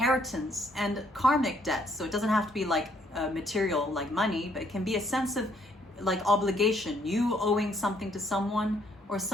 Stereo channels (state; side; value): normal; both; correlation 0.68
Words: and karmic debts. So it doesn't have to be like material, like money, but it can be a sense of like obligation, you owing something to someone or